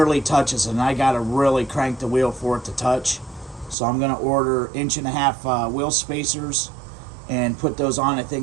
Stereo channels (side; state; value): left; drops out; at 3.8 s